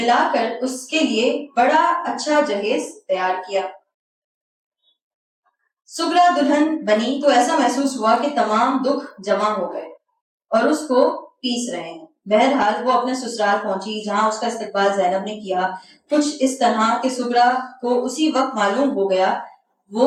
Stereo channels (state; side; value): identical; both; correlation 1.00